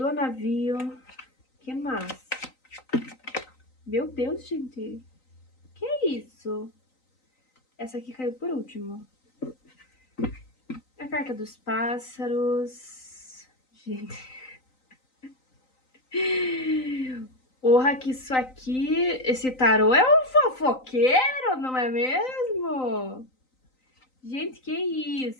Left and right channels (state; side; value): late; right; 3.9 ms